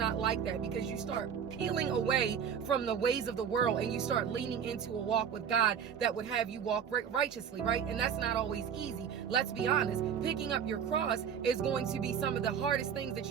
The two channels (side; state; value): left; quieter; 7.8 dB